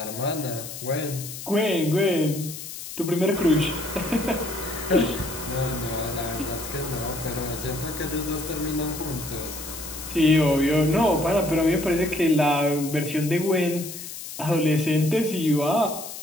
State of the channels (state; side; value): noise; left; hiss, 10 dB below the sound